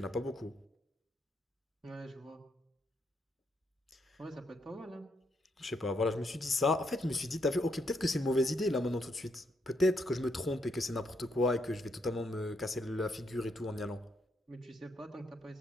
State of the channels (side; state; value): both; normal; correlation 0.77